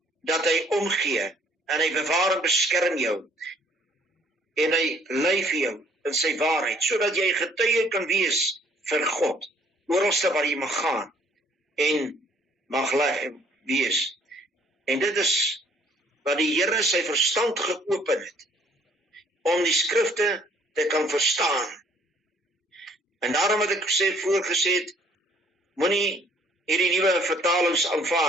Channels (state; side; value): normal; both; correlation 0.61